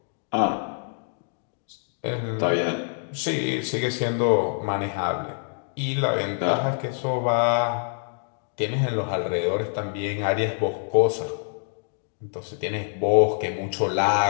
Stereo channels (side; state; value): right; silent; digital silence